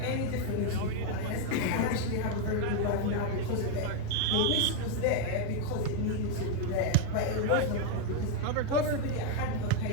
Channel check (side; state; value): both; different; correlation 0.00